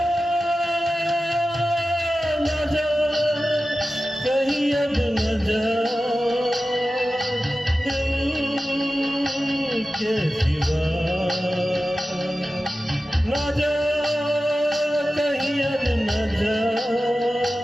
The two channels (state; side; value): normal; both; correlation 0.94